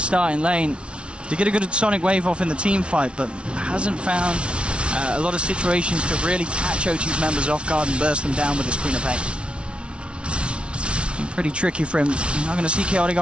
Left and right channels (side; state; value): left; late; 0.059 ms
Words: in lane to get a good sonic wave off in the team fight, but hasn't found a lot of situations to really catch OG's members off guard and burst them down with his Queen of Pain. Pretty tricky for him. You're not going to see Chaotic